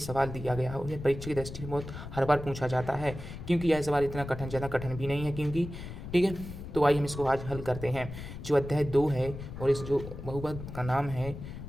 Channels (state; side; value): noise; left; rumble, 10 dB below the sound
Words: दिया गया है और यह परीक्षा की दृष्टि से बहुत हर बार पूछा जाता है, क्योंकि यह सवाल इतना कठिन, ज़्यादा कठिन भी नहीं है क्योंकि, ठीक है। तो आइए हम इसको आज हल करते हैं। जो अध्याय 2 है और इस जो बहुपद का नाम है,